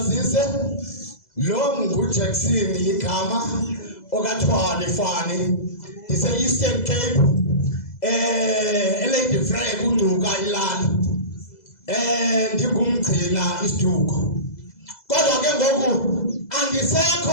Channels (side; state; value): right; late; 2.0 ms